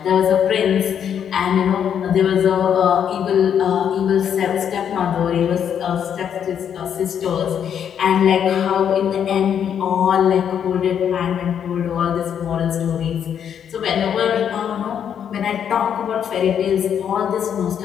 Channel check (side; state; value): right; quieter; 8.6 dB